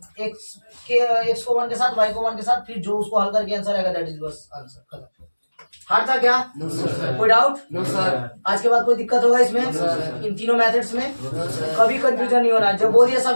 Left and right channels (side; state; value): both; inverted; correlation -1.00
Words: x को 1 के साथ, y को 1 के साथ, फिर जो उसको हल करके आंसर आएगा, दैट इज बस आंसर, खत्म। हार्ड था क्या? कोई डाउट? No sir. आज के बाद कोई दिक्कत होगा इसमें? इन तीनों मेथड्स में कभी कंफ्यूजन नहीं होना। जब बोल दिया